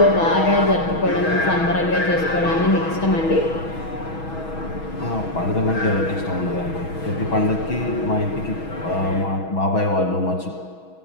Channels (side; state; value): right; late; 6.2 ms